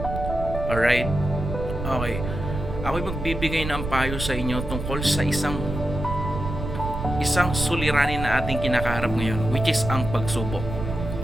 Alright? Okay. Ako'y magbibigay ng payo sa inyo tungkol sa isang suliranin na ating kinakaharap ngayon, which is ang pagsubok.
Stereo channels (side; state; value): right; noise; rumble, 6 dB below the sound